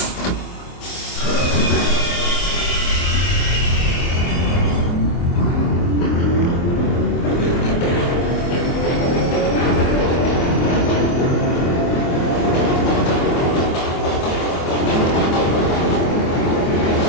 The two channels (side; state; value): right; late; 24 ms